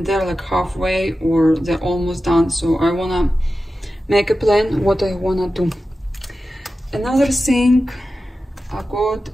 they're like halfway or they're almost done, so I want to make a plan what I want to do. Another thing I got,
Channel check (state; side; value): normal; both; correlation 0.93